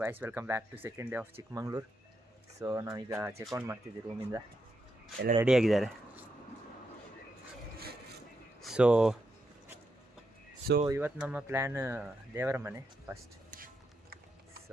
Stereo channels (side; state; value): both; normal; correlation 0.83